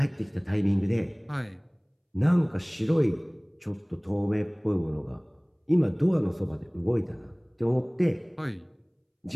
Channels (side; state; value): both; identical; correlation 1.00